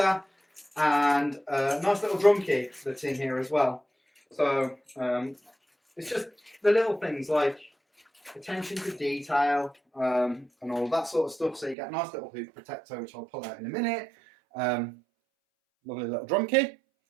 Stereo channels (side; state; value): left; drops out; at 11.8 s